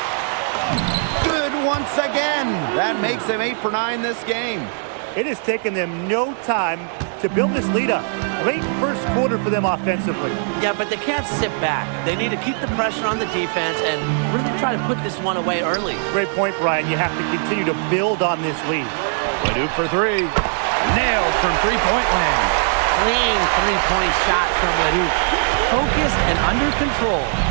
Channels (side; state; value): left; silent; 66 dB below the other